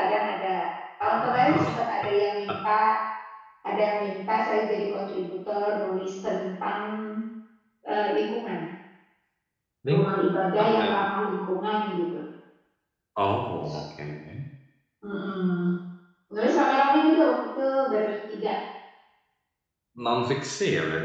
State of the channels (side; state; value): both; identical; correlation 1.00